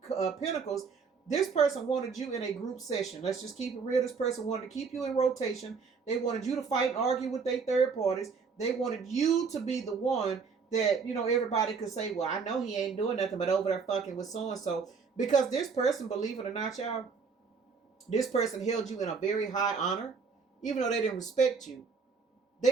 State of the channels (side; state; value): left; quieter; 5.3 dB